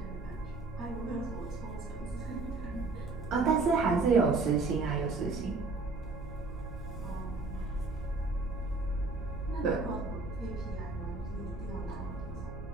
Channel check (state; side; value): quieter; left; 3.7 dB